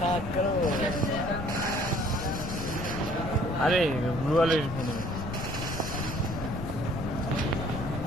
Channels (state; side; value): noise; left; rumble, 7 dB below the sound